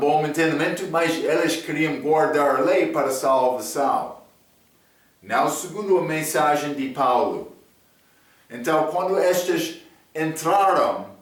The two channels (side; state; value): both; identical; correlation 1.00